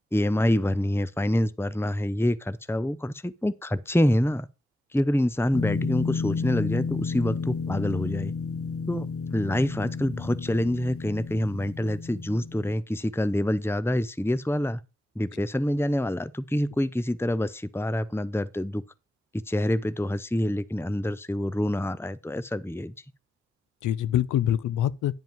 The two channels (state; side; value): normal; both; correlation 0.89